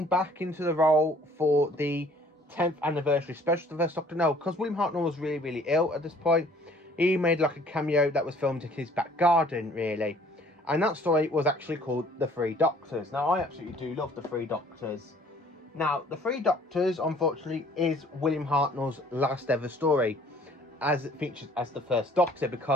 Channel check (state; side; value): normal; both; correlation 0.55